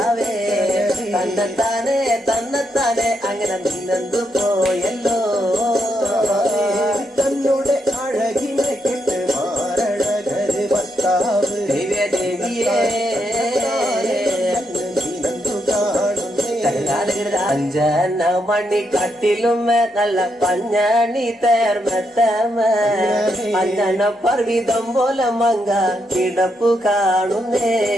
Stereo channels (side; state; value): both; normal; correlation 0.80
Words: തന്നെത്താനെ അങ്ങനെ നിന്നെന്തു പോയല്ലോ തന്നോടെ അഴകിനെ കേട്ട് മാറഴകര് ഭർത്താവ് ദേവിയെ അഞ്ചന മണി കട്ടിലുമേ നല്ല പഞ്ഞണി തേർമത്തമേ അഞ്ചന പർവിതം പോലെ മങ്ക കിടപ്പു കാണുന്നേ